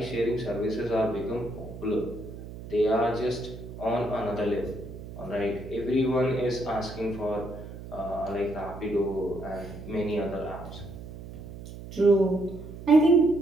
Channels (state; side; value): noise; right; hum, 12 dB below the sound